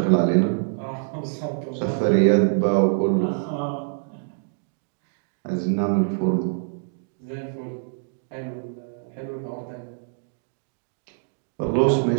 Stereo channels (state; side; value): silent; left; digital silence